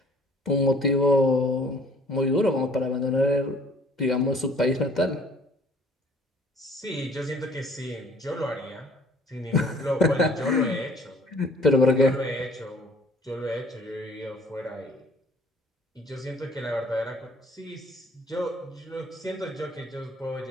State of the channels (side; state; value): both; normal; correlation 0.56